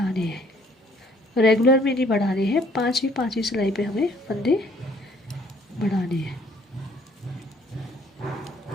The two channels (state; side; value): normal; both; correlation 0.61